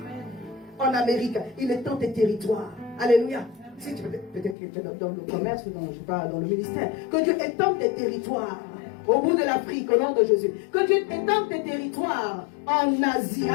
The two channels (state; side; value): drops out; right; at 4.5 s